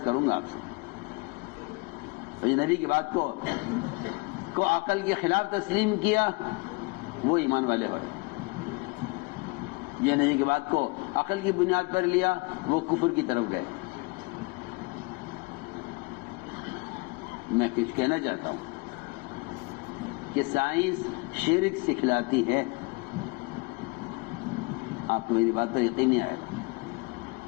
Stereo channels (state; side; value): quieter; right; 28.1 dB